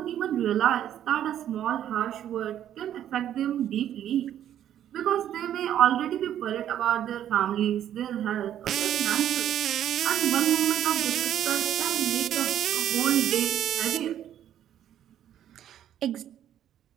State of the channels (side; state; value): left; quieter; 10.8 dB